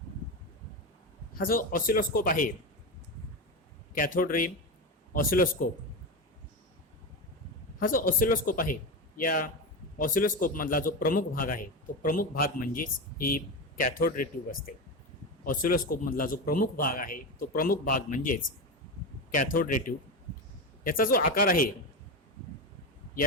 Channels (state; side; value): normal; both; correlation 0.17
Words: हा जो ऑसिलोस्कोप आहे कॅथोड रे ऑसिलोस्कोप, हा जो ऑसिलोस्कोप आहे या ऑसिलोस्कोपमधला जो प्रमुख भाग आहे तो प्रमुख भाग म्हणजेच ही कॅथोड रे ट्यूब असते. ऑसिलोस्कोपमधला जो प्रमुख भाग आहे तो प्रमुख भाग म्हणजेच कॅथोड रे ट्यूब. याचा जो आकार आहे या